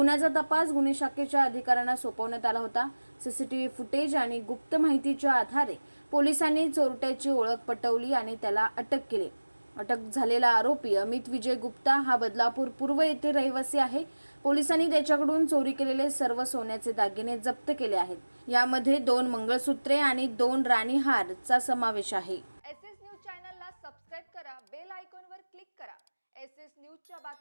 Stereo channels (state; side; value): inverted; both; correlation -1.00